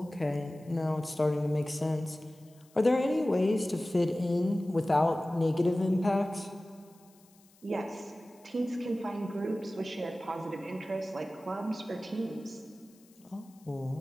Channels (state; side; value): noise; left; hiss, 29 dB below the sound